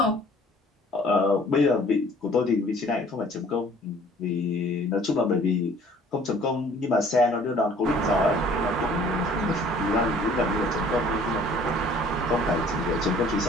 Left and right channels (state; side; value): normal; both; correlation 0.54